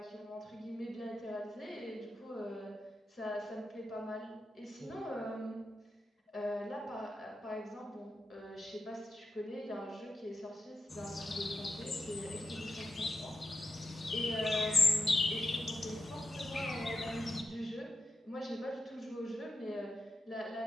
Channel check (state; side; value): normal; both; correlation 0.89